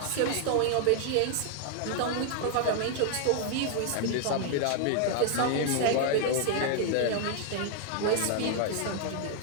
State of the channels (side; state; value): both; different; correlation 0.00